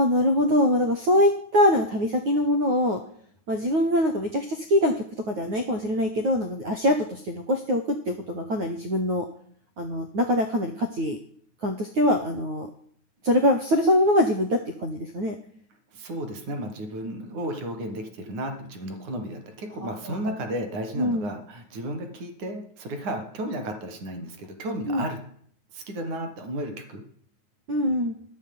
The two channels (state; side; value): late; left; 9.5 ms